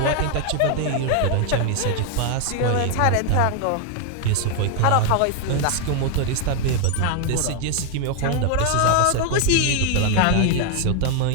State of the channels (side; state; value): both; different; correlation 0.00